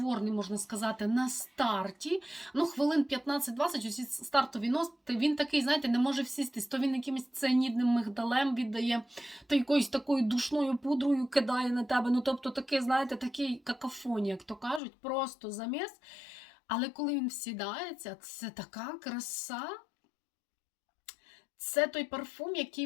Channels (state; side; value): drops out; right; at 14.8 s